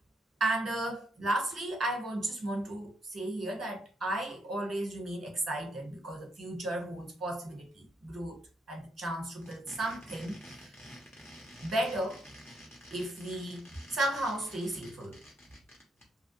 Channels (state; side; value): normal; both; correlation 0.76